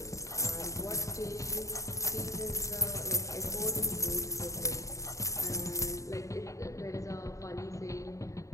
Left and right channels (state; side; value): late; right; 0.15 ms